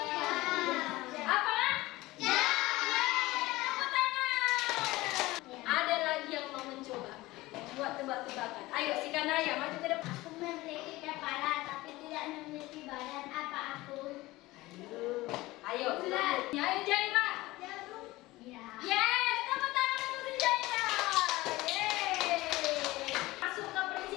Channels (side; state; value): right; quieter; 19.2 dB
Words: Apa? Tepuk tangan. Ada lagi yang mau mencoba buat tebak-tebakan. Ayo si Kanaya maju ke depan. Aku memiliki kepala tapi tidak memiliki badan. Apa aku? Ayo, ayo Jaira. Ya. Yes, tepuk tangan untuk si Jaira. Yeay. Masuk ke